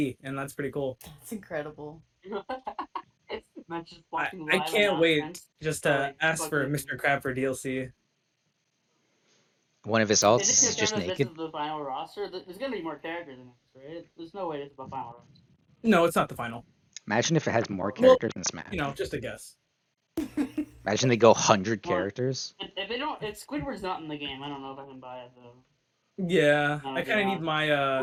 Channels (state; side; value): identical; both; correlation 1.00